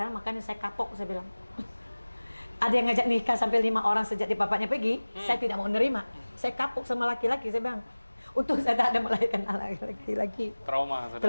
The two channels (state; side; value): inverted; both; correlation -1.00